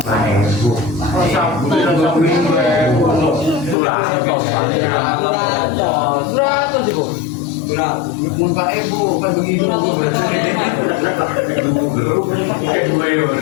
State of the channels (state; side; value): drops out; right; at 3.8 s